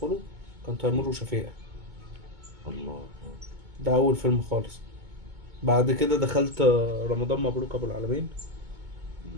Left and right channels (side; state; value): left; late; 2.2 ms